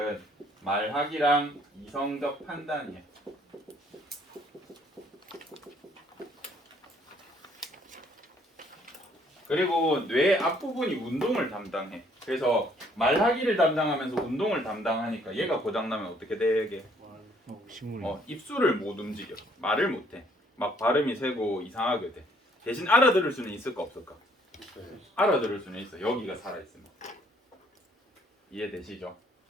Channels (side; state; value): both; normal; correlation 0.63